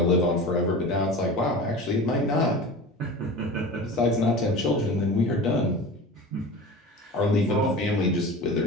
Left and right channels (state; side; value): normal; both; correlation 0.33